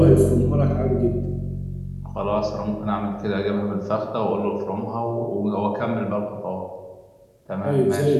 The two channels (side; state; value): both; identical; correlation 1.00